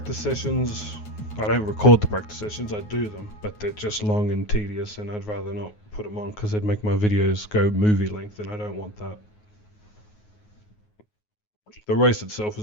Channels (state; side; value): late; right; 9.5 ms